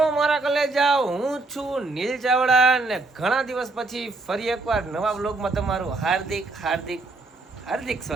મારા કલેજા? હું છું નીલ ચાવડા ને ઘણા દિવસ પછી ફરી એકવાર નવા વ્લોગમાં તમારું હાર્દિક હાર્દિક હાર્દિક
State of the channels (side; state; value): left; quieter; 3.3 dB